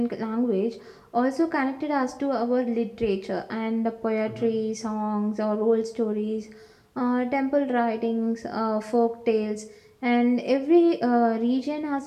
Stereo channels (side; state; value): both; identical; correlation 1.00